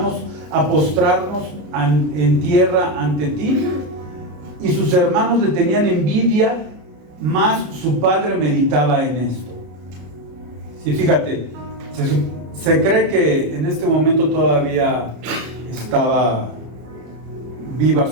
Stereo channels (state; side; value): late; left; 34 ms